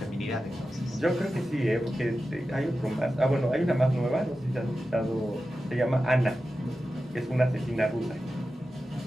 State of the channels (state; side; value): normal; both; correlation 0.92